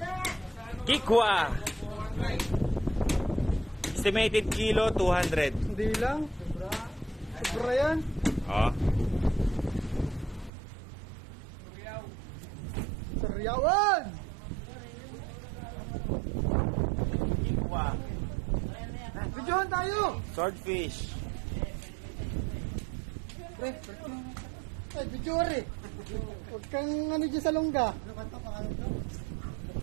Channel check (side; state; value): left; drops out; at 10.5 s